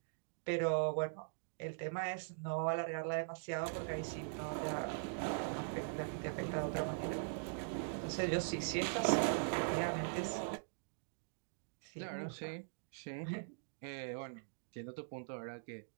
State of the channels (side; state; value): left; silent; digital silence